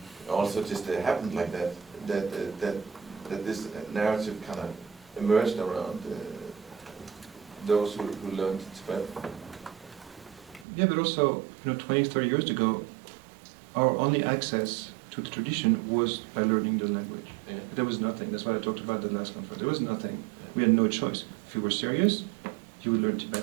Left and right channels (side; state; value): left; drops out; at 10.7 s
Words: also just happened like that. That this narrative kind of emerged around those who learned Tibetan. Yeah, but also, you know, 20, 30 years ago, our only access to the tradition was by learning the language. Yeah. There was nothing. That's what I talked about the last conference. There was nothing. We had no choice. If you were serious, you would learn